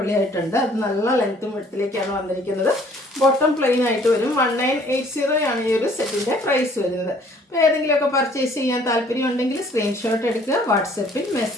അത് നല്ല ലെങ്ത്തും വിഡ്ത്തിലേക്കാണ് വന്നിരിക്കുന്നത്. ബോട്ടം പ്ലെയിൻ ആയിട്ട് വരും. 1980 ആണ് ഈ ഒരു സെറ്റിൻ്റെ പ്രൈസ് വരുന്നത്. അപ്പോൾ ഏതെങ്കിലുമൊക്കെ പർച്ചേസ് ചെയ്യാൻ താല്പര്യം ഉണ്ടെങ്കിൽ സ്ക്രീൻഷോട്ട് എടുക്കുക, വാട്സപ്പിൽ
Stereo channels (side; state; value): both; normal; correlation 0.58